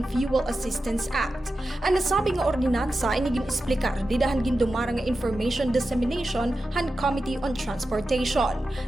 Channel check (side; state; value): both; normal; correlation 0.92